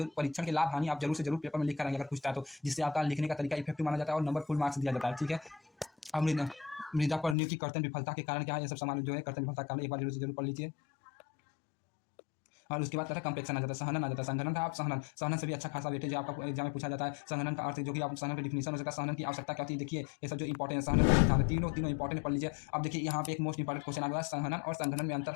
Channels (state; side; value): drops out; right; at 7.4 s